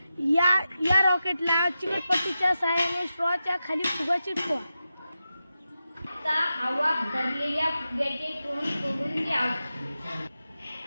या रॉकेटला चिकटपट्टीच्या सहाय्याने स्ट्रॉच्या खाली फुगा चिटकवा। आता हवा भरलेल्या फुग्याचे तोंड तोडून घ्या।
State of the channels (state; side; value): inverted; both; correlation -0.91